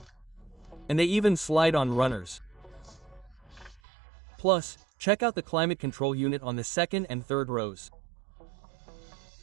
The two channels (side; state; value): left; drops out; at 3.8 s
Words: And they even slide on runners. Plus, check out the climate control unit on the second and third rows.